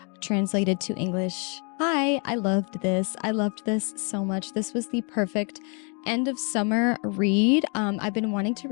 translated to English. I loved this. I loved this so much. This was the perfect end of summer read. I've been wanting to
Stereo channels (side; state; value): right; quieter; 36.4 dB